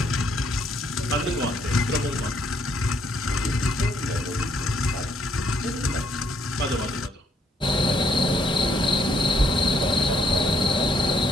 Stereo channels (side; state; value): both; normal; correlation 0.70